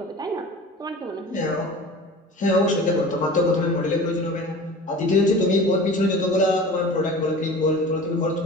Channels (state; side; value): normal; both; correlation 0.39